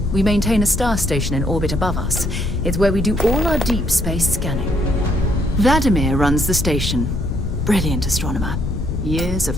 We maintain a star station in orbit above us. It's where we do all our deep space scanning. Vladimir runs the station. Brilliant astronomer. Years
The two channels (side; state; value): left; noise; rumble, 4 dB below the sound